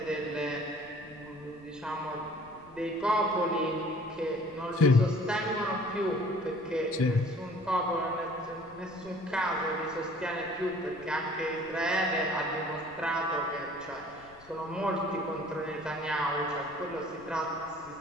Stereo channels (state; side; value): noise; left; rumble, 25 dB below the sound